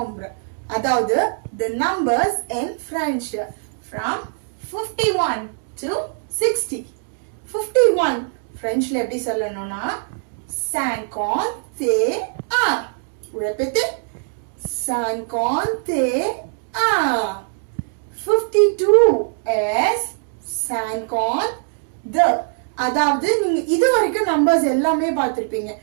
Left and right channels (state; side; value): silent; left; digital silence